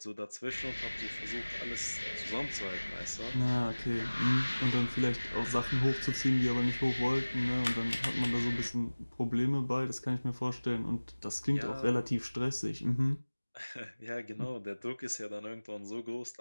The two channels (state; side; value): inverted; both; correlation -1.00